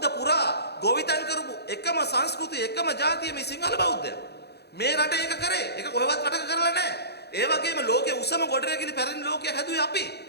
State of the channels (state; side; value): late; right; 0.48 ms